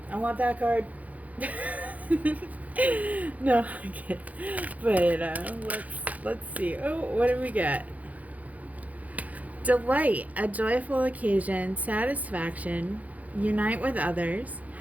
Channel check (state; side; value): late; left; 0.074 ms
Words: I want that card. No, I can't. But let's see. Oh, what do we get? Delight, a joyful occasion, satisfaction, unite with others,